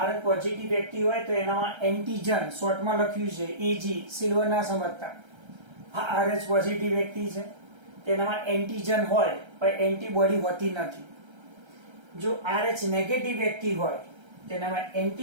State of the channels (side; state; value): left; late; 1.3 ms